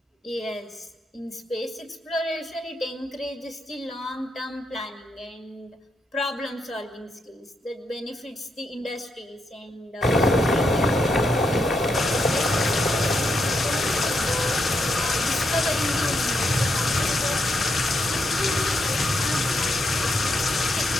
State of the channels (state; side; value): normal; both; correlation 0.80